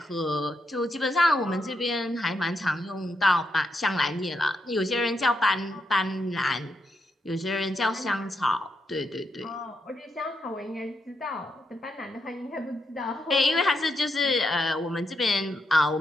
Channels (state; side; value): normal; both; correlation 0.82